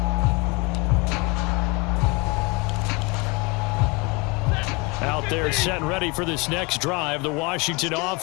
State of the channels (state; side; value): quieter; right; 27.5 dB